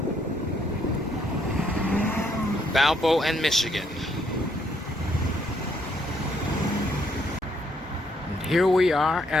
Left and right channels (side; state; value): both; normal; correlation 0.71